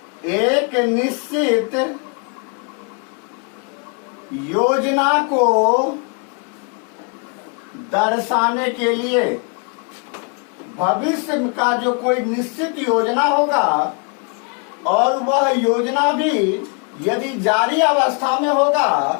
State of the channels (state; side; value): quieter; right; 36.0 dB